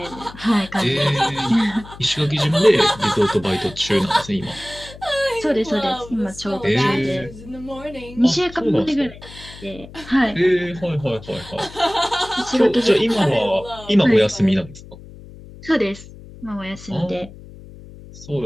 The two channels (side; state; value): left; noise; hum, 18 dB below the sound